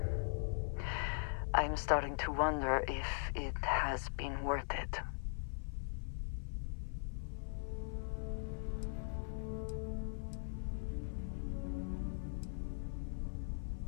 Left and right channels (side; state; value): right; silent; 51 dB below the other